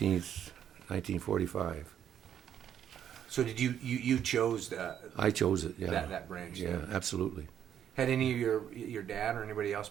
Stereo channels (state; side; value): quieter; left; 9.6 dB